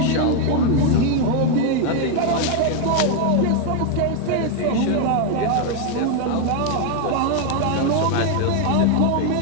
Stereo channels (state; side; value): different; both; correlation 0.01